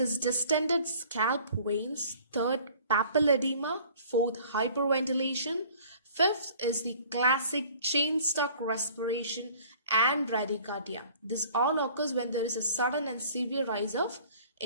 distended scalp veins, third papilledema, fourth hyperventilation, fifth is the classic chain stuck respiration and bradycardia. This all occurs when there is a sudden and severe rise of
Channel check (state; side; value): inverted; both; correlation -0.51